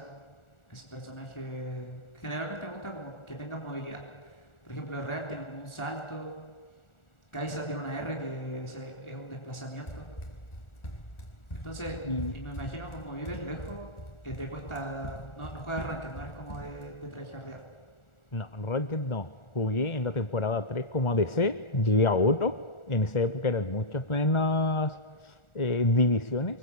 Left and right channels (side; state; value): right; late; 1.4 ms